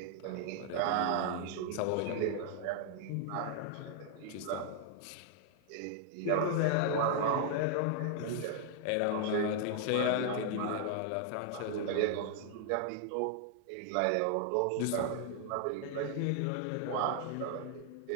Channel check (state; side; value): different; both; correlation 0.00